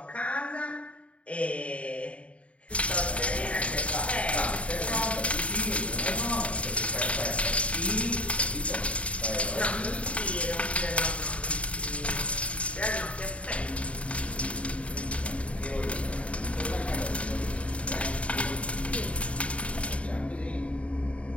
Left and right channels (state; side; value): late; right; 0.064 ms